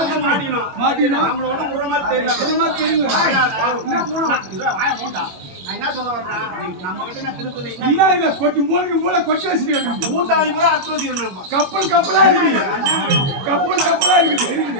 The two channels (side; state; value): left; late; 21 ms